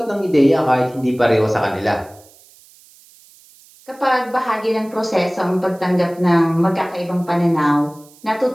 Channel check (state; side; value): noise; right; hiss, 26 dB below the sound